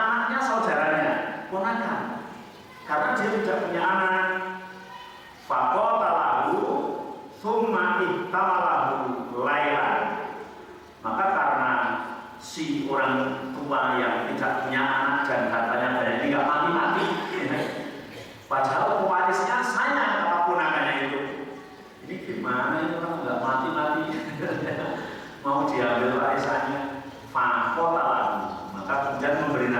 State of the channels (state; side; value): identical; both; correlation 1.00